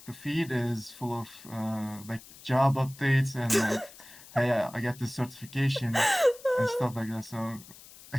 the feed is full of like job updates and like hey I got this certification and stuff like that. So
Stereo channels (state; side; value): noise; left; hiss, 20 dB below the sound